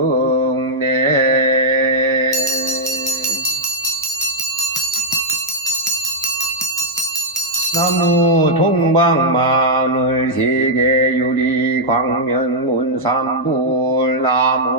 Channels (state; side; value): normal; both; correlation -0.06